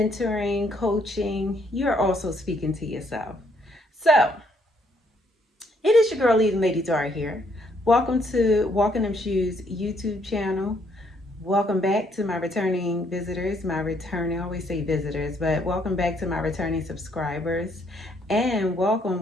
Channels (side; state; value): both; normal; correlation 0.69